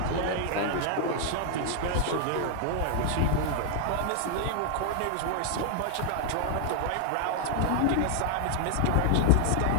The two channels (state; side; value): different; both; correlation 0.00